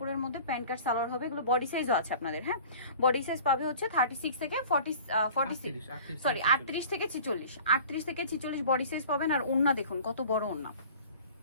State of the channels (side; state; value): both; inverted; correlation -0.44